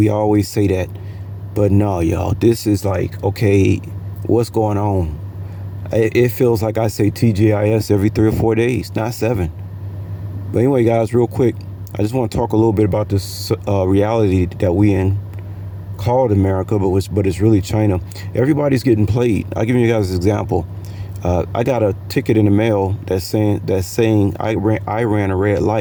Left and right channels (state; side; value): identical; both; correlation 1.00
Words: always say that, but no, y'all, this is like, okay, what's going on? It feels like I say TGIS every 3 or 4 days, not 7. But anyway, guys, real quick, I just want to talk a little bit about this reality that we in, called America, but it's really China. Everybody's getting played. I'll give you guys an example. I got a ticket in the mail that's saying I ran a red